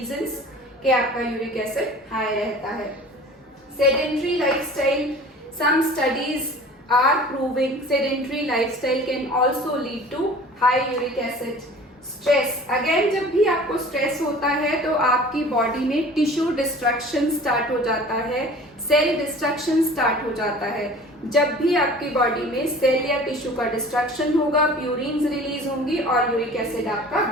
कि आपका यूरिक एसिड हाई रहता है। Sedentary lifestyle, some studies are proving sedentary lifestyle can also lead to high uric acid. Stress, again जब भी आपको stress होता है तो आपकी बॉडी में टिश्यू डिस्ट्रक्शन स्टार्ट हो जाता है, सेल डिस्ट्रक्शन स्टार्ट हो जाता है। जब भी आपकी बॉडी में सेल या टिश्यू का डिस्ट्रक्शन होगा, प्यूरिन्स रिलीज होंगी और यूरिक एसिड आपका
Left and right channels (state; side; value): normal; both; correlation 0.44